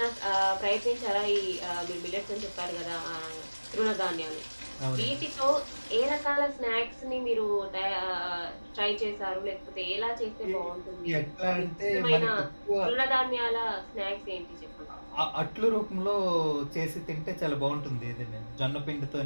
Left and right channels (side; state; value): both; inverted; correlation -1.00